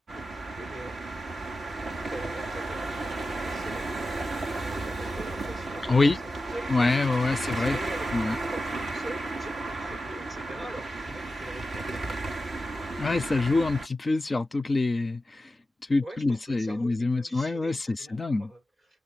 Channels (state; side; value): normal; both; correlation 0.92